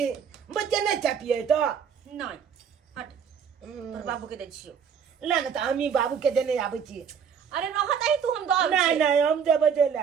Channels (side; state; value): left; quieter; 7.1 dB